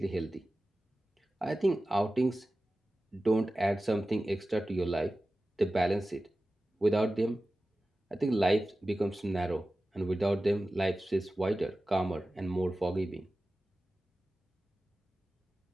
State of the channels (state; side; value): normal; both; correlation 0.95